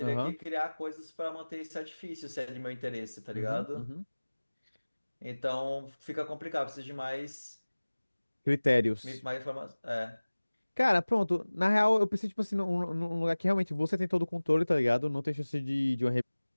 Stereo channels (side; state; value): both; inverted; correlation -1.00